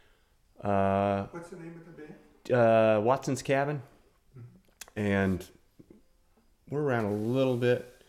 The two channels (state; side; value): identical; both; correlation 1.00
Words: What's the name of the band? Watson's Cabin, and we're around a little bit,